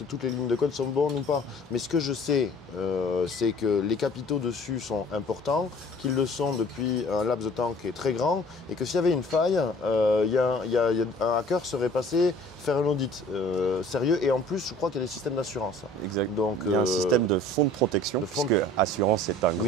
toutes les lignes de code sont bonnes ou pas. Mais ce que je sais, c'est que les capitaux dessus sont importants, qu'ils le sont depuis un laps de temps qui est très grand, et que s'il y avait une faille, un hacker serait passé faire un audit sérieux. Et en plus, je crois qu'il y a des systèmes d'assurance. Exact. Donc, il y a un système de fonds de protection, parce que assurance, c'est un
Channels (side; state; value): both; normal; correlation 0.50